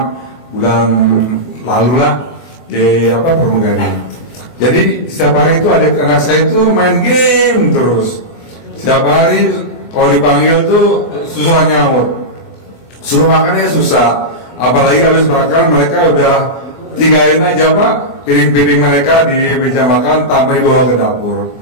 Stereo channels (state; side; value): late; right; 24 ms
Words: bulan lalu lah di pramugari. Jadi setiap hari itu anak saya itu main game terus. Setiap hari kalau dipanggil tuh susah nyaut, suruh makannya susah. apalagi habis makan mereka udah tinggalin aja Pak piring-piring mereka di meja makan tanpa dibawa ke dapur.